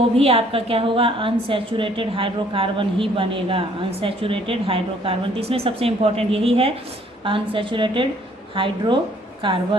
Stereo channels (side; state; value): both; normal; correlation 0.61